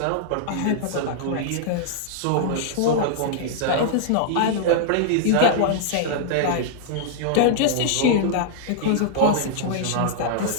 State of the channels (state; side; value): different; both; correlation -0.01